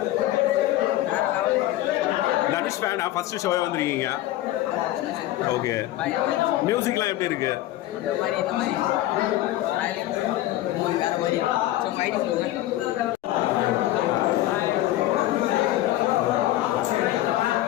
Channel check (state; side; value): quieter; right; 15.0 dB